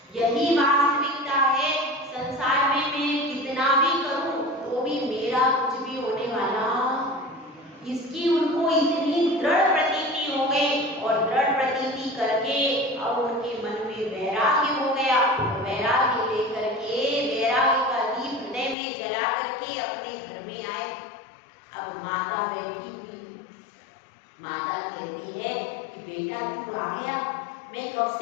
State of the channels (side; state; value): right; drops out; at 18.8 s